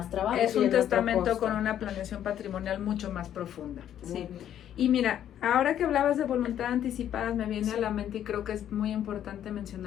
trabajo. Es un testamento con una planeación patrimonial mucho más profunda. Sí. Y mira, ahora que hablabas de voluntad anticipadas, me viene a la mente, y creo que es muy importante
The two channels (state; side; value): quieter; right; 10.5 dB